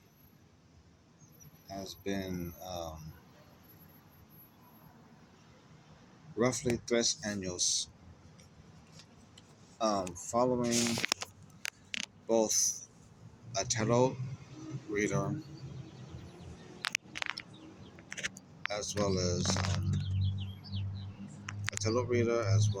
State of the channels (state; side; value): identical; both; correlation 1.00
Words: has been roughly 3 años, following both a tarot reader as well as a tarot reader as